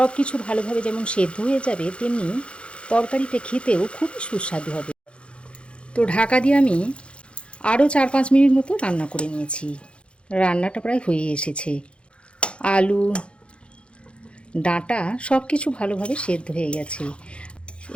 কিছু ভালোভাবে যেমন সেদ্ধ হয়ে যাবে তেমনি তরকারিটা খেতেও খুবই সুস্বাদু হবে। তো ঢাকা দিয়ে আমি আরও 4-5 মিনিট মতো রান্না করে নিয়েছি। রান্নাটা প্রায় হয়ে এসেছে। আলু ডাঁটা সব কিছু ভালোভাবে সেদ্ধ হয়ে গেছে।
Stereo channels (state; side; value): late; right; 0.058 ms